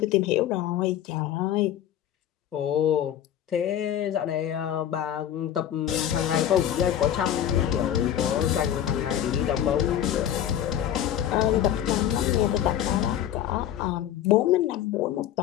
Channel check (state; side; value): quieter; right; 10.9 dB